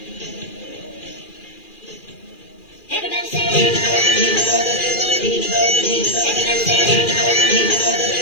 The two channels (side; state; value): right; late; 2.4 ms